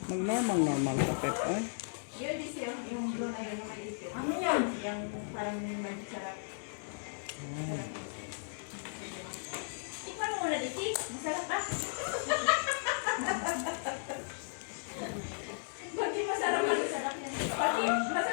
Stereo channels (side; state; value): right; silent; 54 dB below the other